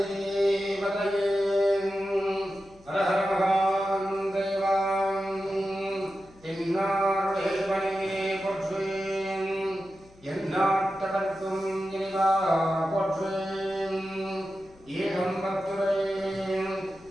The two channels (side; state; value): left; noise; hum, 26 dB below the sound